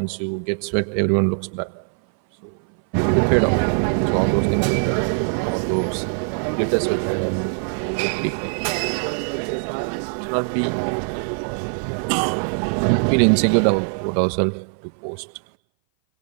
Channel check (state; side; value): silent; left; 59 dB below the other